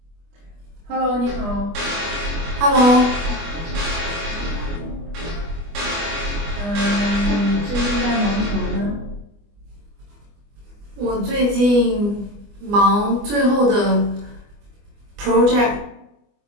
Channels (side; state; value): left; late; 24 ms